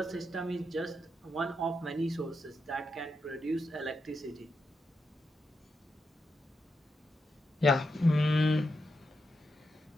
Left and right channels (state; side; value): normal; both; correlation 0.84